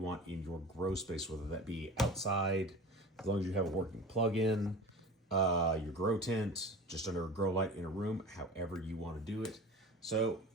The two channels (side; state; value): both; normal; correlation 0.36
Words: want in your grow space, whether that be outside, as long as you have a working plug-in, your grow tent, just under a grow light in a room, however you want to do it. So